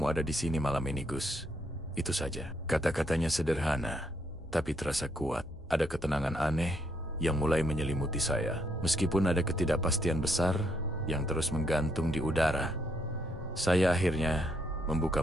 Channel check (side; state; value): both; normal; correlation 0.73